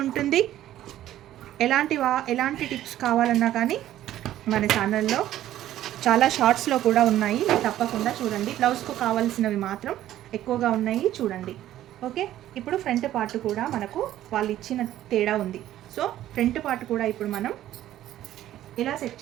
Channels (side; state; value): left; quieter; 13.1 dB